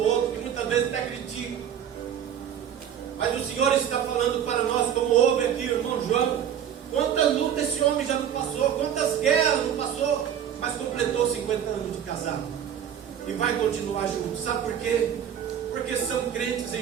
outro, que muitas vezes até critica. Mas o Senhor está falando para nós, como houve aqui o irmão João. Quantas lutas esse homem já não passou, quantas guerras não passou, mas completou 50 anos de casado e vai continuar junto. Sabe por quê? Porque são crentes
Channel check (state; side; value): quieter; left; 9.3 dB